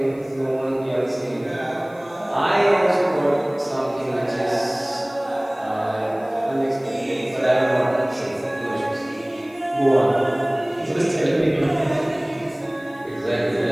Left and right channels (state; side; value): noise; left; hiss, 29 dB below the sound